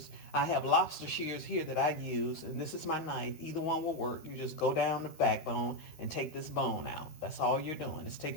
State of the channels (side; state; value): right; late; 13 ms